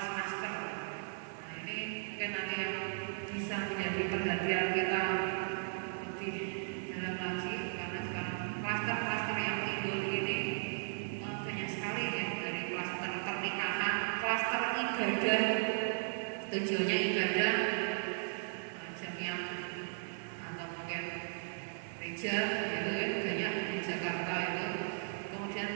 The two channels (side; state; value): left; silent; digital silence